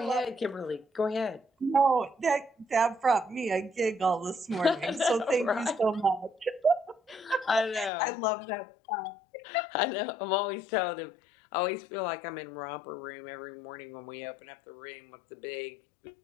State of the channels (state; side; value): drops out; right; at 7.9 s